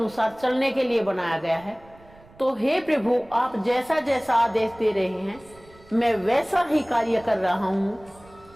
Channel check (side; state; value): right; noise; rumble, 25 dB below the sound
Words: चलने के लिए बनाया गया है। तो हे प्रभु, आप जैसा जैसा आदेश दे रहे हैं मैं वैसा ही कार्य कर रहा हूं।